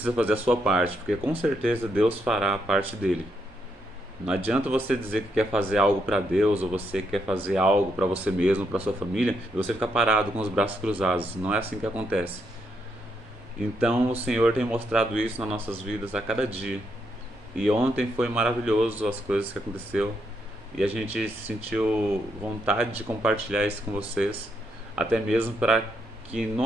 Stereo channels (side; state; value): both; normal; correlation 0.78